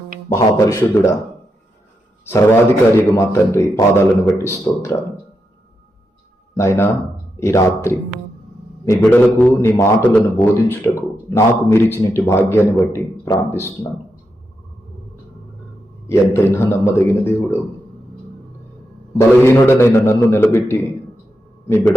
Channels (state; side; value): normal; both; correlation 0.85